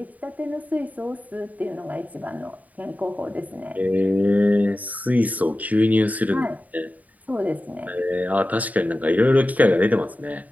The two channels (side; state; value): left; late; 0.075 ms